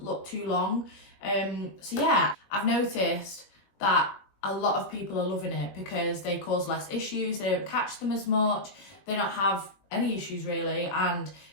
look too long. So yeah, I've noticed that a lot of people are loving it because they cause less issues, they don't catch them as much, they don't have any issues really. And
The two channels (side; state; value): right; late; 21 ms